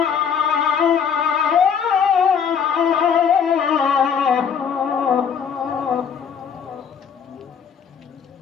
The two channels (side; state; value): right; quieter; 7.1 dB